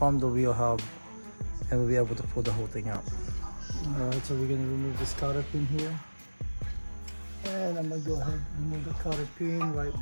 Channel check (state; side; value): inverted; both; correlation -1.00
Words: the wheel hub, and we'll be able to pull the whole thing out. Alright, so we're gonna remove this cotter pin here, and I'm gonna go ahead and remove the cotter pin right